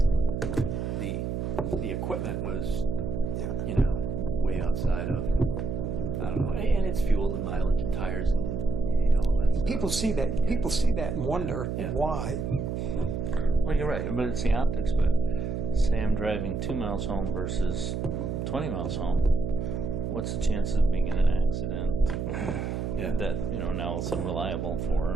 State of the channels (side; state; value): right; noise; hum, 2 dB below the sound